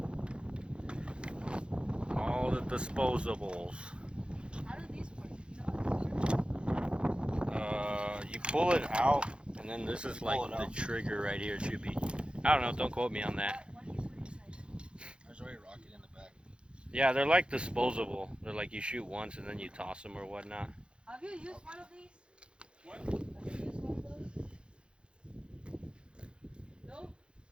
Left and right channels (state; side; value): late; left; 0.055 ms